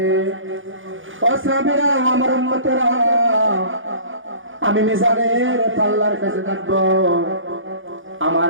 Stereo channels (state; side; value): late; left; 0.58 ms